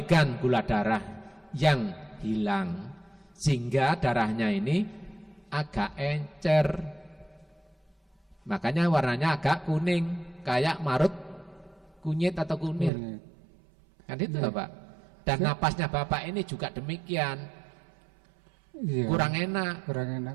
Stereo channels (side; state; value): left; drops out; at 12.9 s